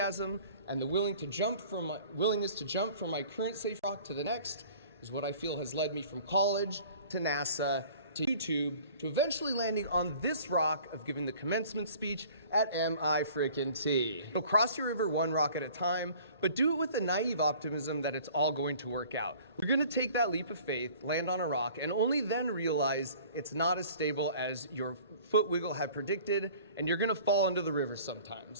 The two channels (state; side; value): inverted; both; correlation -0.49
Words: and the willingness to jump from my current safe rock to the next is what I feel has led me from college to NASA to YouTube to eventually landing on this rock of giving the commencement speech at MIT. So cross your river one rock at a time, but do it with the naive optimism that it's all going to work out. You're going to take that leap of faith, land on a rock, and only then realize it's not as stable as your foot wiggle had predicted, and you're going to fall into the river